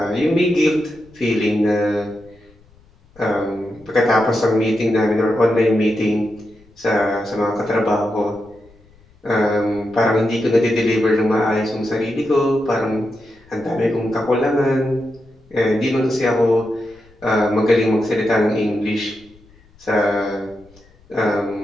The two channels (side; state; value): left; noise; rumble, 29 dB below the sound